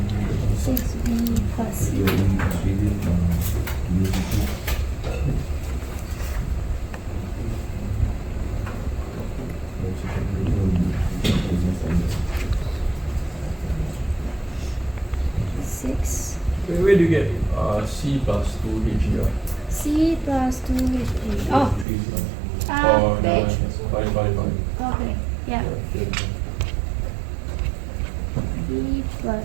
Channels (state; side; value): drops out; left; at 21.9 s